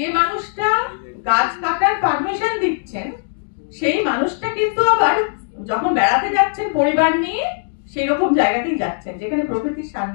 মানুষটা গাছ কাটার পারমিশন দিচ্ছেন, সেই মানুষটা কিন্তু আবার যখন বেড়াতে যাচ্ছেন পরিবার নিয়ে, সেই রকম জায়গাতেই যাচ্ছেন যেখানে প্রকৃতির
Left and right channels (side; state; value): right; silent; digital silence